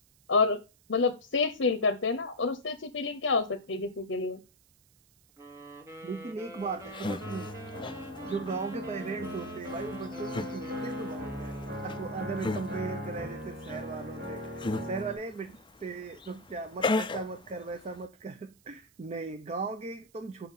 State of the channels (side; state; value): right; noise; hiss, 30 dB below the sound